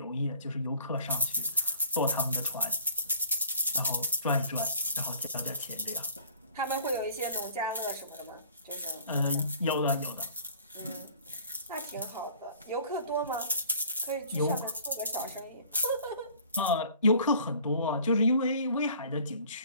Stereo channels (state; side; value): inverted; both; correlation -0.51